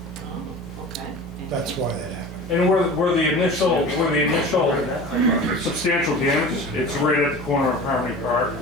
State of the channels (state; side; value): normal; both; correlation 0.37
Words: Oh, okay. That's why that happened. And where the initial substantial damage, it's right at the corner of Harmony Park.